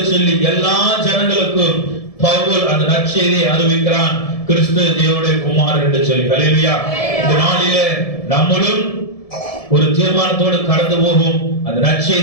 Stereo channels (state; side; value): late; right; 1.7 ms